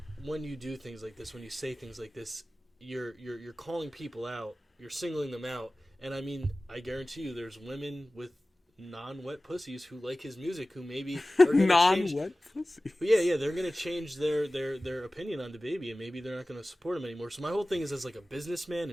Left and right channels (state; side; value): normal; both; correlation 0.97